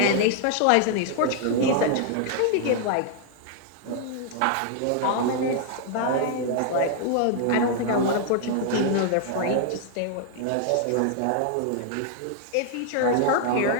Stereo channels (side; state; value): both; different; correlation 0.00